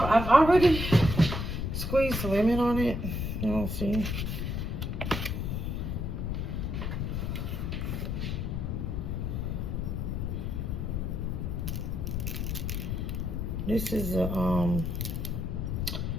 I've already squeezed lemon on it. You don't see. This is a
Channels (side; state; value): left; noise; rumble, 1 dB below the sound